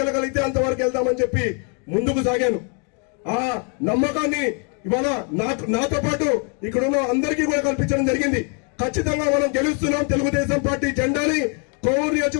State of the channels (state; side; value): quieter; right; 38.5 dB